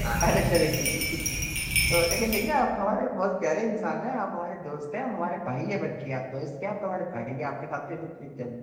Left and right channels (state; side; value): identical; both; correlation 1.00